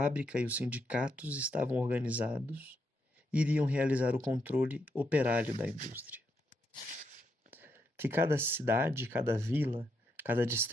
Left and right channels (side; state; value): both; normal; correlation 0.80